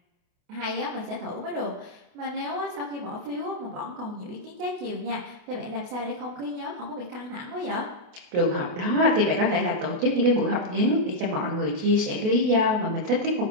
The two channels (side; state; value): left; late; 28 ms